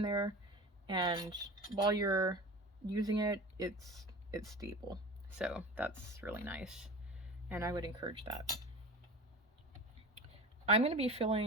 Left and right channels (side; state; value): both; normal; correlation 0.32